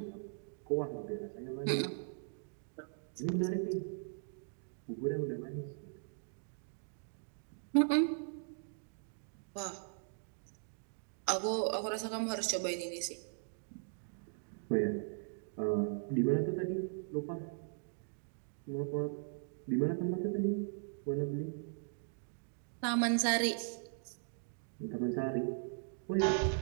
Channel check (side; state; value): left; silent; digital silence